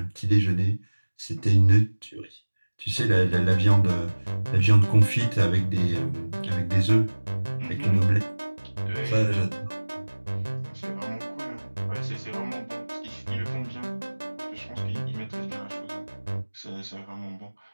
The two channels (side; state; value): both; inverted; correlation -1.00